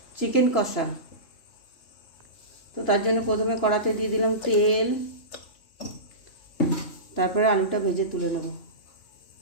চিকেন কষা। তো তার জন্য প্রথমে কড়াতে দিয়ে দিলাম তেল, তারপরে আলুটা ভেজে তুলে নেব।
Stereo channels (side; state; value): right; late; 2.9 ms